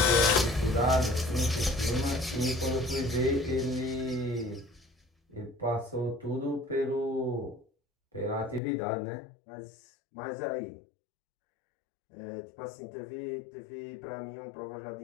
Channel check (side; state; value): right; drops out; at 8.6 s